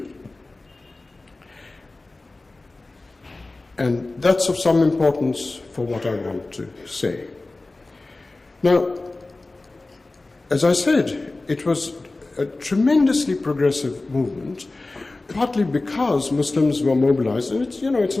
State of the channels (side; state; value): right; quieter; 3.1 dB